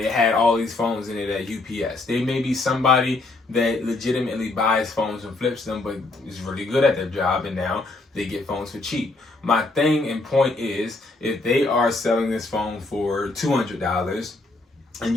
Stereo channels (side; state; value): right; quieter; 3.1 dB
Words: had all these phones in it at UPS. They may be somebody that legitimately buys phones and flips them, but is really good at their job, and now they get phones for cheap. My thing and point is, if they are selling this phone for $200, and